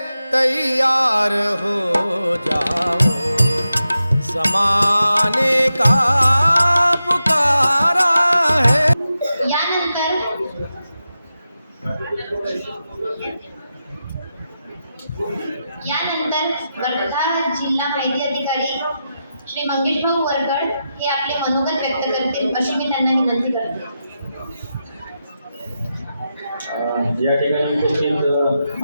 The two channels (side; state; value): both; inverted; correlation -0.89